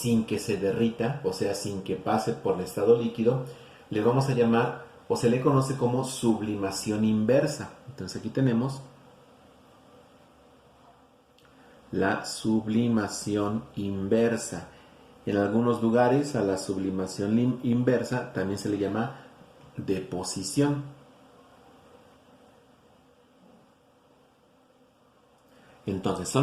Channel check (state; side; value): identical; both; correlation 1.00